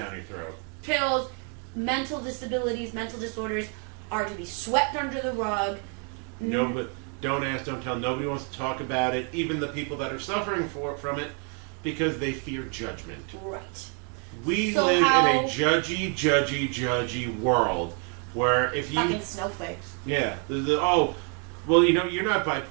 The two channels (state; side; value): quieter; left; 39.6 dB